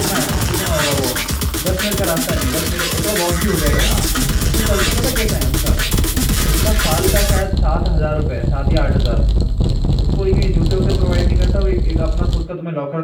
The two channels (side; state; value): both; identical; correlation 1.00